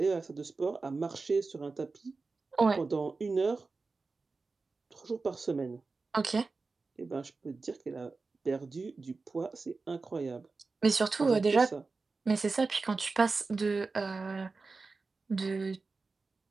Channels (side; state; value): left; quieter; 4.0 dB